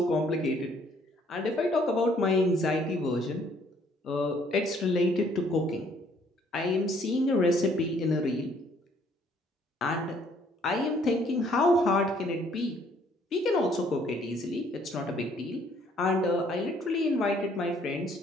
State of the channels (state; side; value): normal; both; correlation 0.63